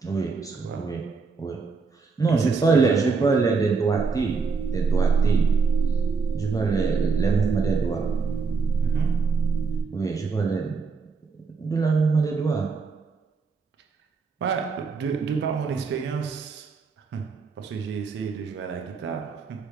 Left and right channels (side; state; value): left; quieter; 4.7 dB